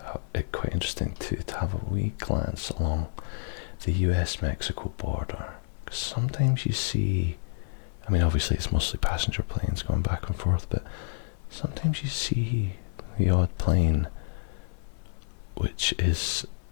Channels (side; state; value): right; silent; 59 dB below the other